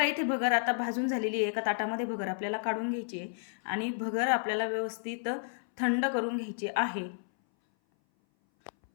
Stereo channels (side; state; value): right; silent; 57 dB below the other